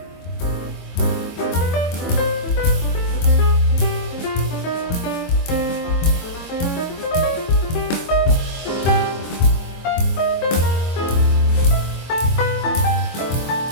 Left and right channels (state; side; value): late; right; 24 ms